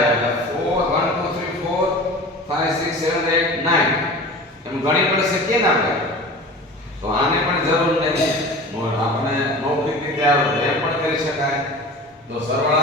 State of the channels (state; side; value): normal; both; correlation 0.37